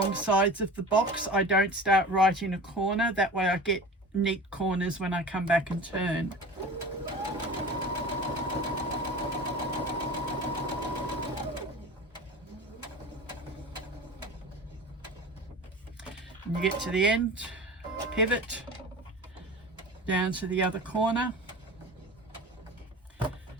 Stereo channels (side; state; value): both; normal; correlation 0.35